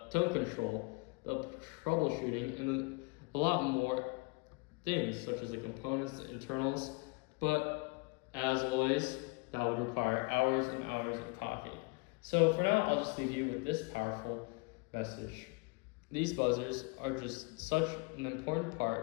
tone control, the troubleshooting, and a lot more things, such as the components, the internals, but as always, that would require hours and hours of talking. So for now, I'll just leave you with this powerful message. These buzzers are just such an important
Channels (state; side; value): quieter; right; 27.9 dB